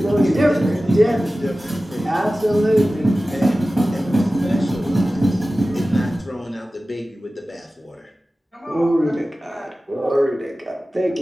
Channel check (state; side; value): normal; both; correlation 0.96